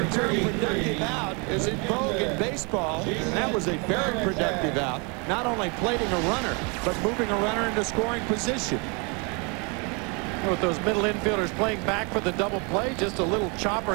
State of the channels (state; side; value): quieter; left; 32.4 dB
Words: term productive out is in vogue in baseball, and that was a very productive out. Not only plating a runner, but moving a runner into scoring position. With those middle infielders playing back for the double play, just a little chopper